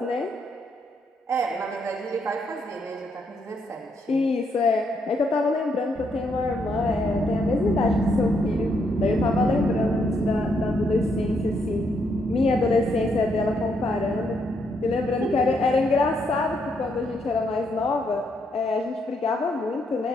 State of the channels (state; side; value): normal; both; correlation 0.75